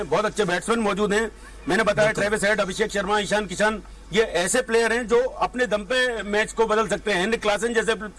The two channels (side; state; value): both; identical; correlation 1.00